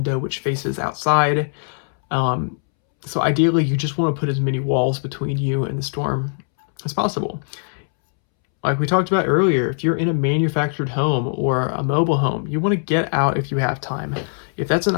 which faces outside. So ideally, you just want to put as many walls between you and the storm as possible. Like we talked about earlier, if you're in a manufactured home or a mobile home, you want to get out if you have time. If that's an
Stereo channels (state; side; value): silent; right; 65 dB below the other